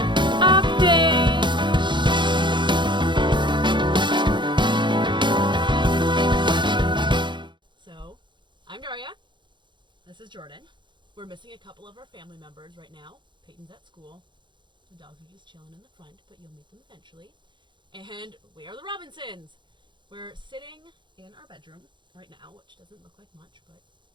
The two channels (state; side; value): late; left; 0.23 ms